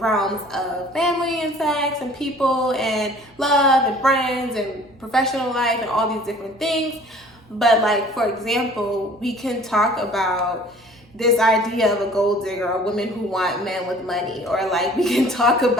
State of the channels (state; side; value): normal; both; correlation 0.50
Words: of family and sex and people and love and friends and professional life and all these different things. But like, for example, we can talk about this idea of a gold digger or women who want men with money, or like we can talk